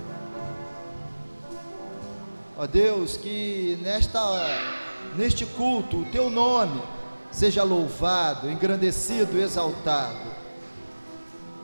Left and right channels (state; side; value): inverted; both; correlation -1.00